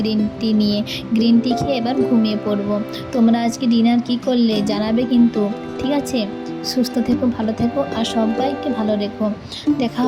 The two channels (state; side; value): identical; both; correlation 1.00